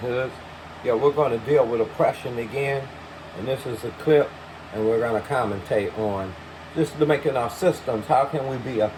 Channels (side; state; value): both; identical; correlation 1.00